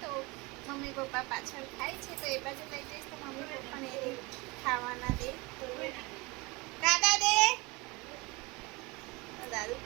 તો મમ્મી પપ્પા પાછળ ખાય છે, તો એ બાજુ લઈ જઈશ તો મમ્મી પપ્પાને એ ખાવાના દે. તો દાદા દે,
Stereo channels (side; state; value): left; quieter; 25.0 dB